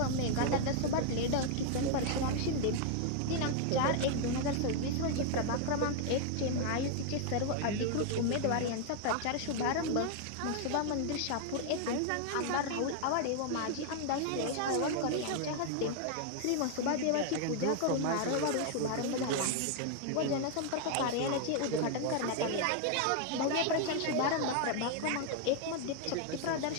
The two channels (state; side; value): different; both; correlation 0.00